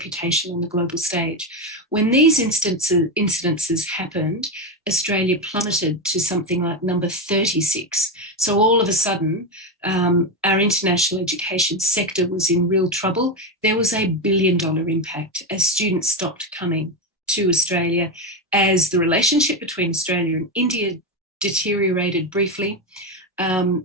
on the global stage. When these incidences happened, Australia plummeted to something like number 36. So all of a sudden, our international education sector was in real trouble. There was $1 billion impact as students stopped coming to Australia, as the relationship between Australia and India deteriorated briefly.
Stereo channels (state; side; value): normal; both; correlation 0.12